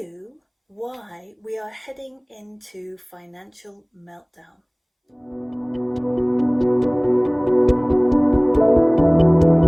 why we are heading into financial meltdown.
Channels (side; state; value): both; identical; correlation 1.00